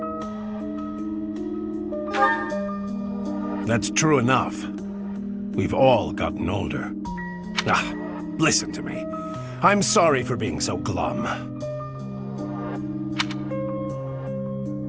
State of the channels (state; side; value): identical; both; correlation 1.00